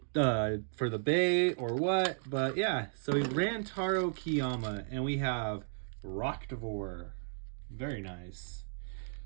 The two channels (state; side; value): silent; left; digital silence